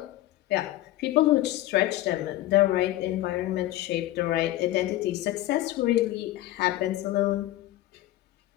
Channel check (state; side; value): quieter; right; 15.2 dB